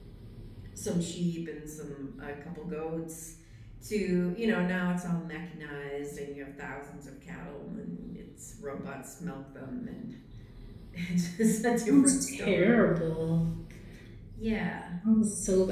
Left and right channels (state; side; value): identical; both; correlation 1.00